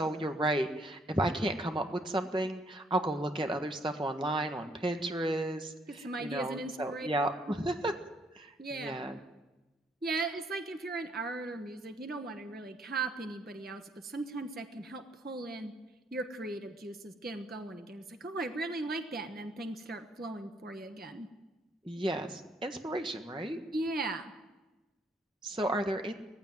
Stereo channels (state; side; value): normal; both; correlation 0.68